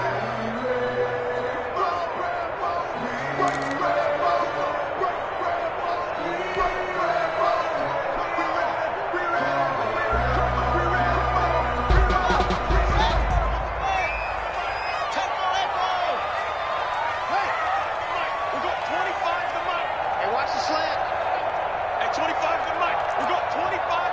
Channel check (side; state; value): both; identical; correlation 1.00